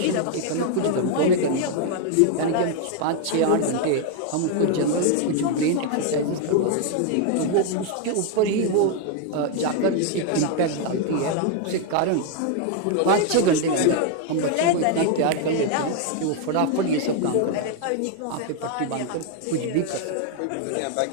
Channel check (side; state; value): both; different; correlation 0.01